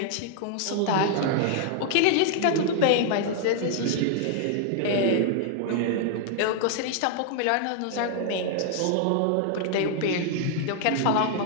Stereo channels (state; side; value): different; both; correlation -0.01